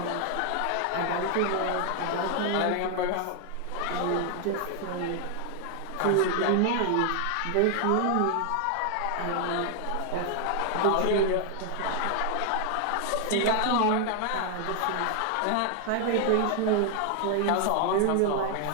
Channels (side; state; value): both; different; correlation 0.00